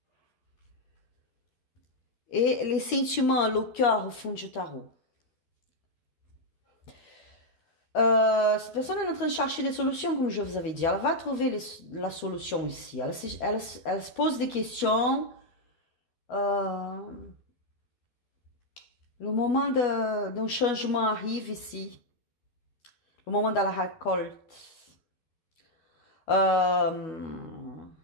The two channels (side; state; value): right; late; 12 ms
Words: et les sentiments, le cœur au fond du tarot. Cette personne est en train de chercher des solutions, comme je vous avais dit. Elle va trouver la solution ici. Elle se pose des questions. Le moment d'un changement arrive ici. Le moment de la récolte.